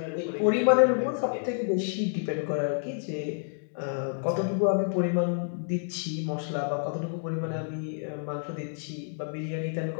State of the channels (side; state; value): right; silent; digital silence